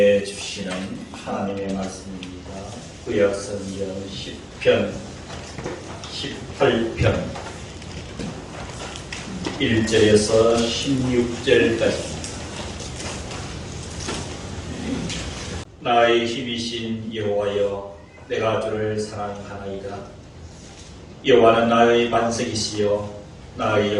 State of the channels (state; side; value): identical; both; correlation 1.00